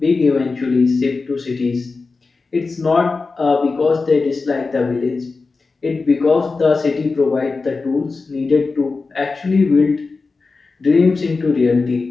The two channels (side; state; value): right; quieter; 4.1 dB